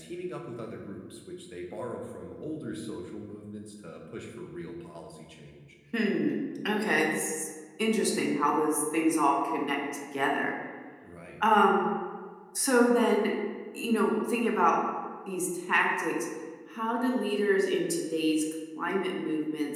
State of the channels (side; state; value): both; identical; correlation 1.00